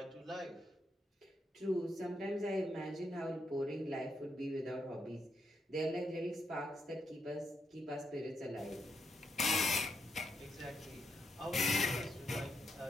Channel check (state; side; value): normal; both; correlation 0.80